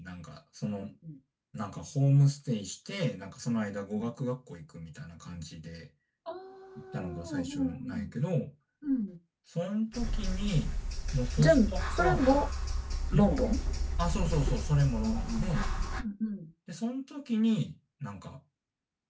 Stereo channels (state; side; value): identical; both; correlation 1.00